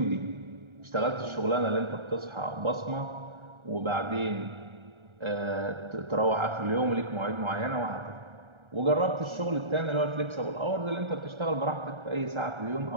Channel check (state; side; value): late; left; 1.3 ms